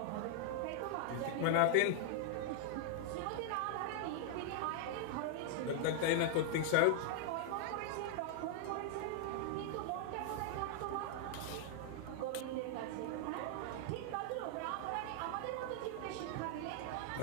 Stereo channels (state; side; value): different; both; correlation -0.01